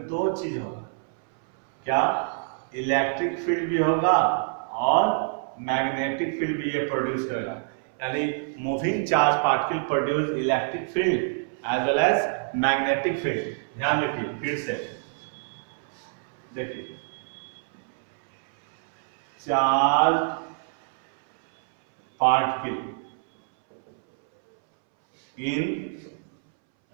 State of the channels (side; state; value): left; silent; 61 dB below the other